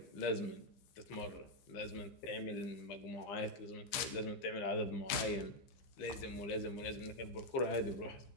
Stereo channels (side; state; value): right; late; 15 ms